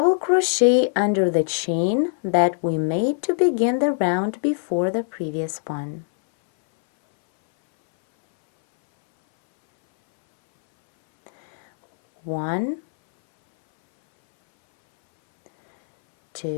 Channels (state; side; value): silent; right; 60 dB below the other